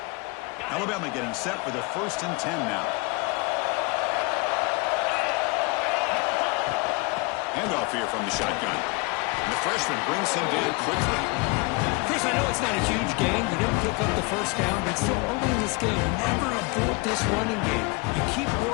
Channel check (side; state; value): right; quieter; 27.5 dB